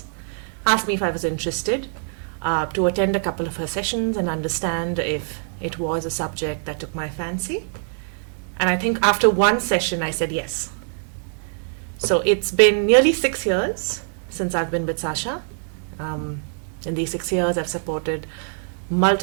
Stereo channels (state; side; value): silent; left; 63 dB below the other